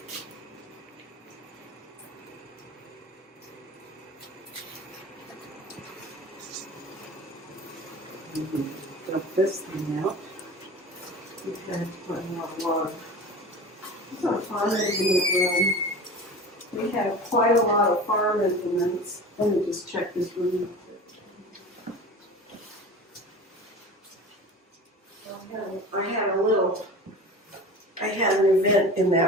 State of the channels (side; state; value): both; normal; correlation 0.35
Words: Dump this thing out. We've had quite a lot of water. This is our farm implement room. We have quite a lot of farm implements. Let me just check this room. I had an event in